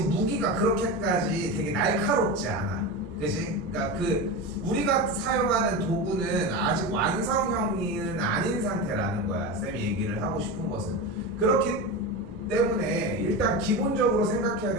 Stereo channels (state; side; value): normal; both; correlation 0.22